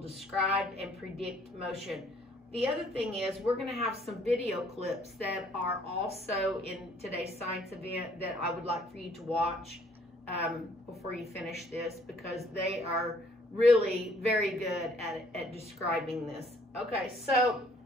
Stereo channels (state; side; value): normal; both; correlation 0.62